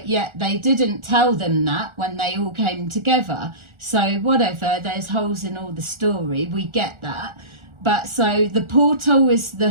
yet they didn't tell them that when they all came together. So whatever, there's holes in all the story, we get that. But so the portal is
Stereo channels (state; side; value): late; left; 1.4 ms